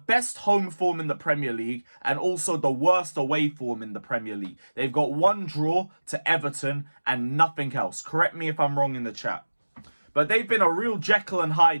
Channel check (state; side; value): inverted; both; correlation -1.00